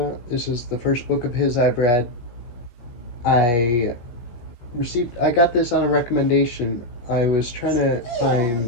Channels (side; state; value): right; late; 16 ms